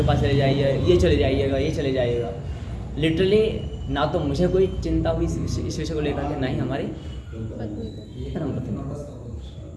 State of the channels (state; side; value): identical; both; correlation 1.00